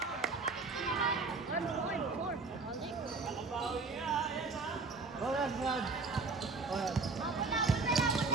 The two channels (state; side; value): quieter; left; 4.0 dB